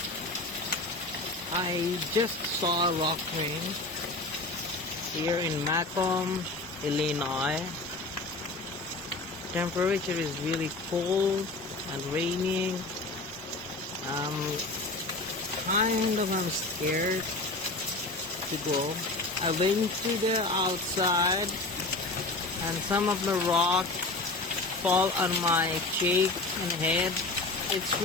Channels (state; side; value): quieter; right; 3.1 dB